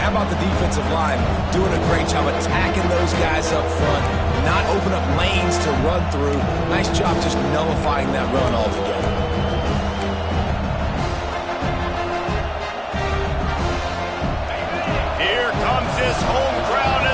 how about the defensive line doing a great job attacking those guys up front, not open up lanes to run through. Nice job just nullifying that run altogether. Here comes this home crowd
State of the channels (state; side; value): identical; both; correlation 1.00